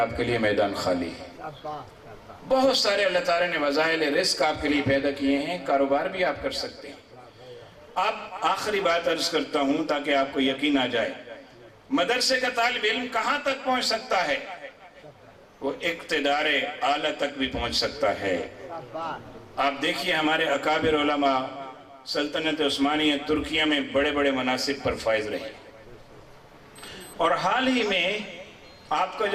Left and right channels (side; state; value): both; identical; correlation 1.00